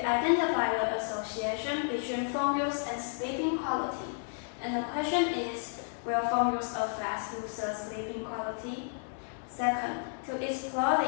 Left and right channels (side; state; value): right; silent; digital silence